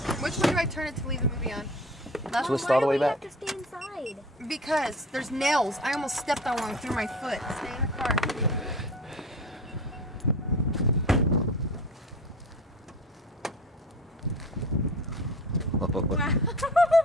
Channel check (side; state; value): both; normal; correlation 0.39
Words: Which way do I turn it to leave the movie on? Left? Twist all the way back. Why do we have to stay inside? Because there's nails. I almost stepped on one through my foot. Stay in the car. Wow.